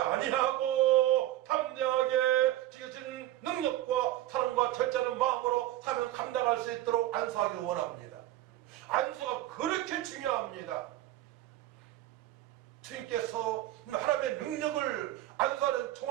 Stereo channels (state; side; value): quieter; left; 14.4 dB